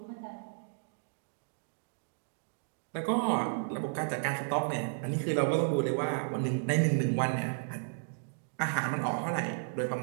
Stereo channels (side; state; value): left; silent; digital silence